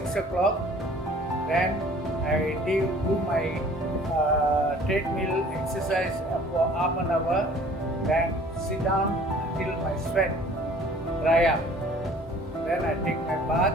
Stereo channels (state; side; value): normal; both; correlation 0.51